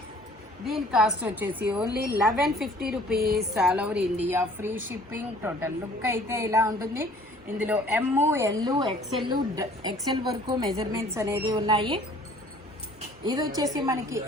దీని కాస్ట్ వచ్చేసి only 1150 rupees all over India, free shipping. Total look అయితే ఇలా ఉంటుంది. ఇందులో ML XL వరకు మెజర్మెంట్స్ అనేది ఉన్నాయి. ఇది వచ్చేసి మనకి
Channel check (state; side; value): normal; both; correlation 0.53